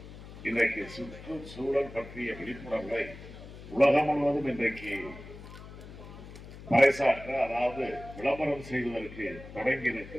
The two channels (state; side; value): noise; left; hum, 15 dB below the sound